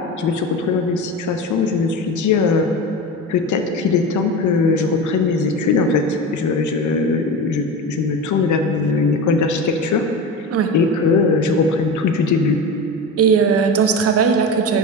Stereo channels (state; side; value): normal; both; correlation 0.25